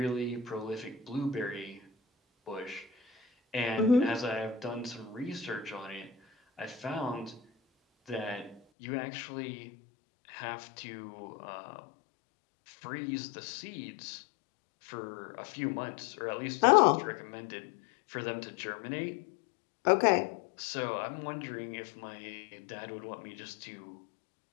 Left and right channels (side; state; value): right; drops out; at 8.6 s